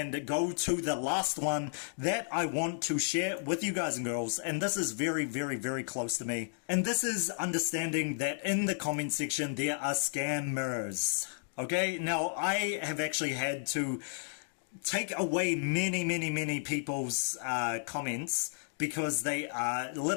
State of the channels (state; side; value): silent; right; digital silence